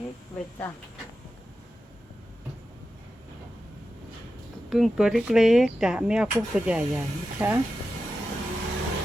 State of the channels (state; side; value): normal; both; correlation 0.91